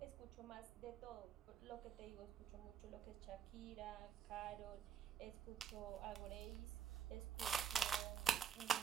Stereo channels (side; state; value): left; quieter; 7.8 dB